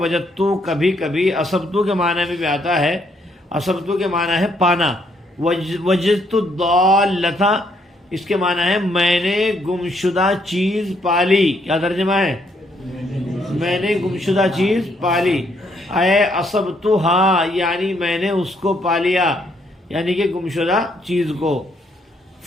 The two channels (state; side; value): normal; both; correlation 0.71